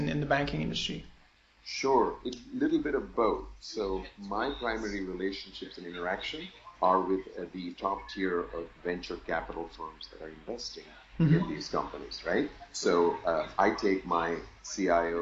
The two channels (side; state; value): both; identical; correlation 1.00